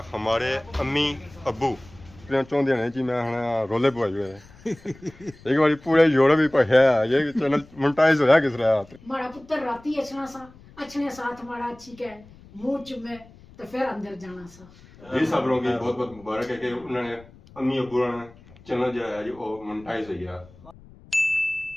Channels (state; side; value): noise; left; rumble, 23 dB below the sound